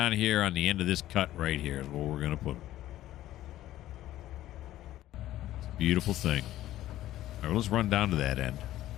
here on the end of this cut right here is where we're going to put them. It's a beautiful thing. All right, let's run down to that end.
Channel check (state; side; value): quieter; right; 14.2 dB